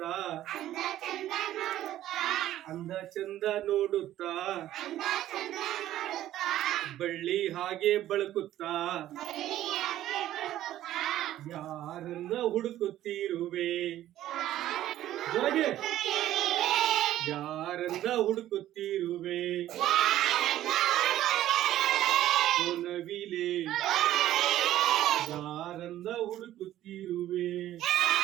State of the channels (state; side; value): quieter; left; 13.2 dB